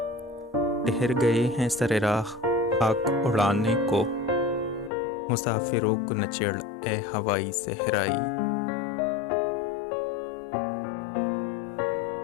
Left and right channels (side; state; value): right; drops out; at 4.9 s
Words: ठहर गए हैं सरे राह खाक उड़ाने को। मुसाफिरों को न चिढ़ ए हवाई सहराई।